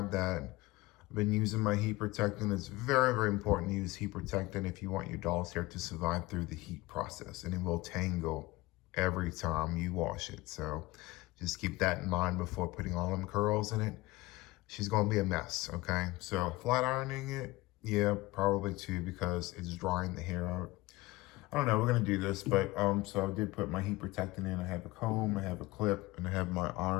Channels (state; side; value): quieter; right; 20.6 dB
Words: that. I've been using my heat protectant. It's very important to use heat protectant if you want your doll's hair to survive through the heat process, and it will tangle every time you wash it. So just keep that in mind before putting all them curls in it. She's going to be a mess, okay? So flat ironing it, yeah, probably too, because it's drying the hair out. I don't know, we're gonna do this, but so I did put my heat protectant in. I have a comb, I have a clip, and I have my